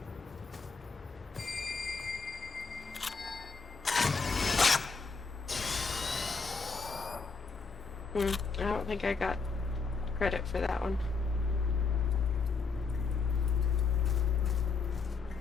I don't think I got credit for that one.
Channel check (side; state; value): right; quieter; 4.8 dB